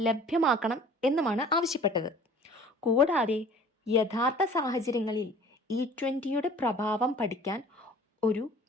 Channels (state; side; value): normal; both; correlation 0.48